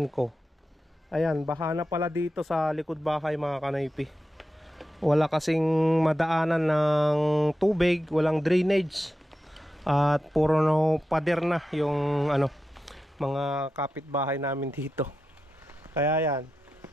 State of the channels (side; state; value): both; normal; correlation 0.90